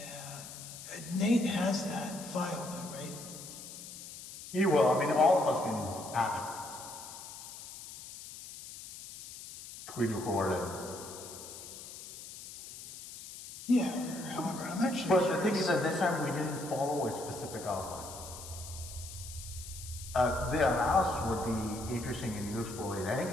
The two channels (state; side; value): noise; left; hiss, 13 dB below the sound